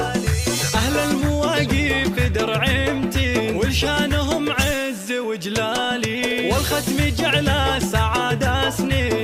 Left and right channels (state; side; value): identical; both; correlation 1.00